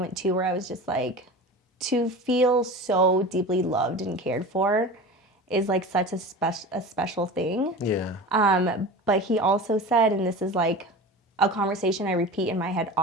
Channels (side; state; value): both; normal; correlation 0.33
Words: too where I was just like, to feel so deeply loved and cared for is like such a special thing. Yeah. But he also said, and this is like a conversation I repeat in my head